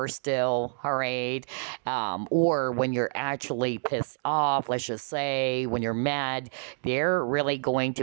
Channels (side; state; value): left; silent; digital silence